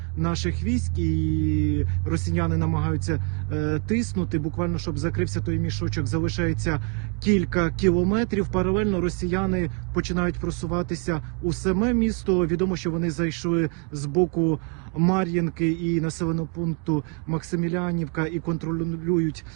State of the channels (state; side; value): quieter; left; 36.1 dB